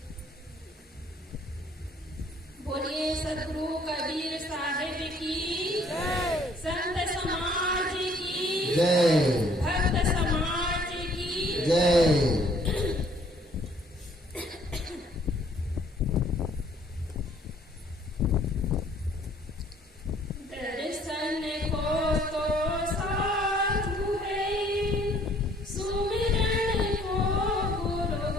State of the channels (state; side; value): normal; both; correlation 0.60